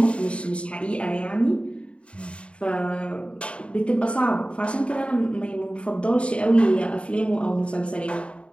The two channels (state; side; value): late; right; 0.059 ms